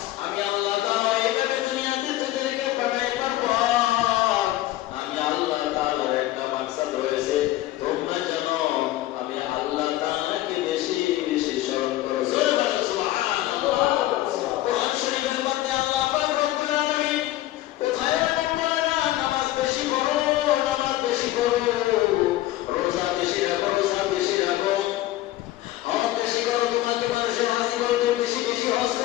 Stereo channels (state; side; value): quieter; right; 15.6 dB